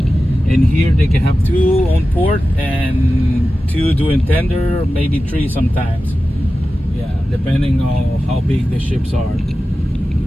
here they can have 2 on port and 2 doing tender, maybe 3 sometimes. Yeah, depending on how big the ships are.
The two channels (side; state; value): both; normal; correlation 0.94